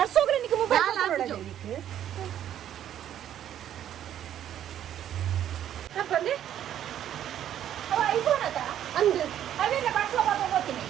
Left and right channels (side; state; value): left; quieter; 10.7 dB